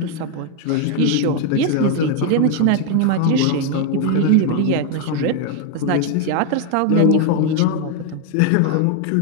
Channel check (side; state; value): both; different; correlation 0.01